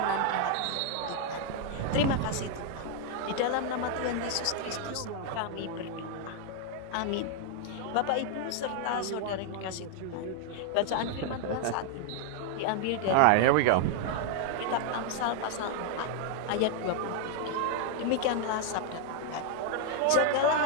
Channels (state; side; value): different; both; correlation 0.00